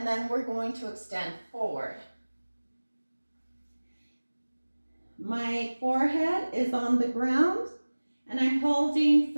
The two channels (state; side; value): inverted; both; correlation -1.00